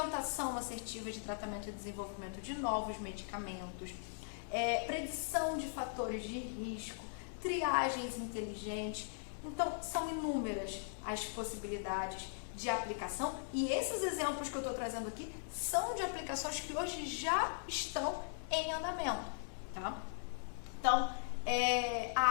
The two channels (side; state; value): right; silent; digital silence